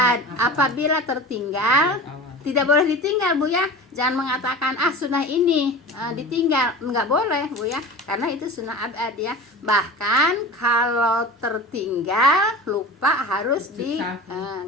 Apabila tertinggal tidak boleh ditinggal bu ya, jangan mengatakan sunnah ini ditinggal, nggak boleh bu ya, karena itu sunnah abad ya. Bahkan kalau tertinggal lupa harus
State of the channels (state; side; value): normal; both; correlation 0.34